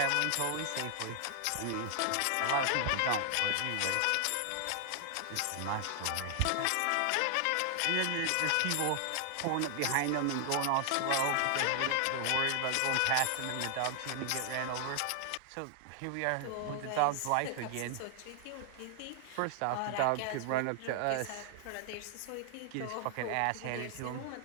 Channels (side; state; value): both; different; correlation 0.00